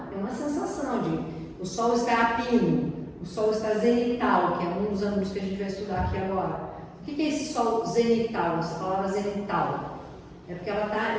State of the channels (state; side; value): identical; both; correlation 1.00